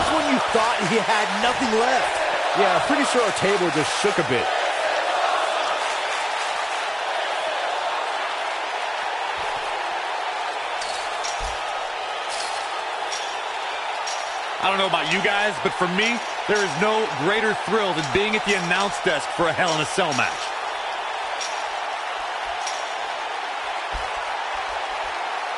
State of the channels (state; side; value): identical; both; correlation 1.00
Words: when you thought he had nothing left. Yeah, I'm pretty sure our table just shook a bit. I don't know about you guys, but for me, there is no greater thrill than being at the announce desk for a Hell in a Cell match.